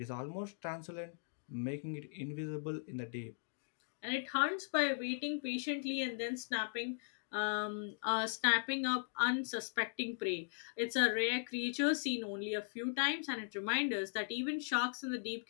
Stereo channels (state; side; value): silent; right; digital silence